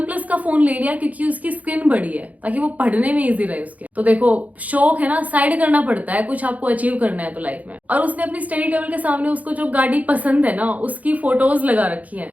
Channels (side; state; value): left; late; 0.074 ms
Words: प्लस का फोन ले लिया, क्योंकि उसकी स्क्रीन बड़ी है, ताकि वो पढ़ने में इजी रहे उसके। तो देखो शौक है ना साइड करना पड़ता है, कुछ आपको अचीव करना है तो लाइफ में। और उसने अपनी स्टडी टेबल के सामने उसको जो गाड़ी पसंद है ना उसकी फोटोज लगा रखी है,